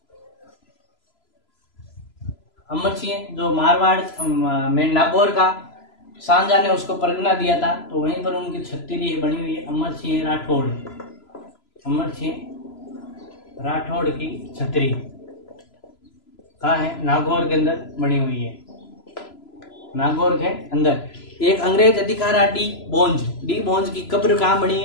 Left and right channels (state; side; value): late; right; 3.0 ms